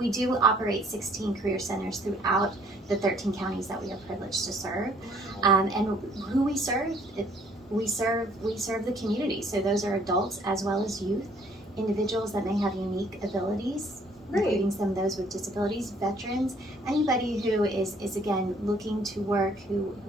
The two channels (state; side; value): normal; both; correlation 0.61